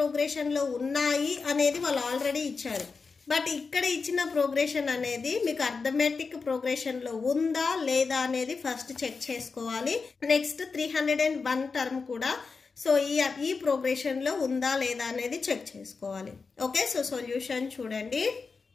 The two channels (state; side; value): quieter; right; 4.7 dB